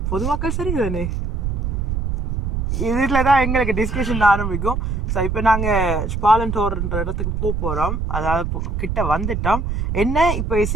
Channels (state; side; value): noise; right; rumble, 1 dB below the sound